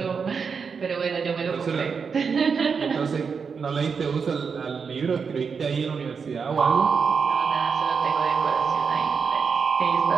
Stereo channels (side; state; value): left; quieter; 5.8 dB